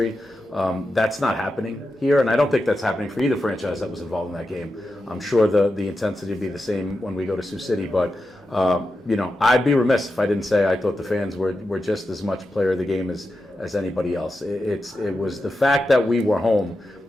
That's not happening here, and I don't think that's happening for either franchise that was involved in that game. I'm sure the intensity will be the same when we go to Sioux City, but I'd be remiss if I didn't say I thought the fans were just as much player of the game as anybody else. It was the fact that we were home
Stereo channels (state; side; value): normal; both; correlation 0.90